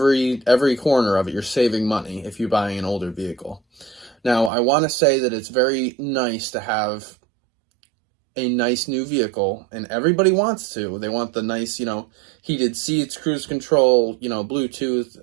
corner of it. You're saving money if you're buying an older vehicle. Now, I want to say that it's very nice to have a nice new vehicle, and everybody wants to. They want the nice, you know, heated seats, cruise control, you know, Bluetooth,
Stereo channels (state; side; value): drops out; left; at 4.5 s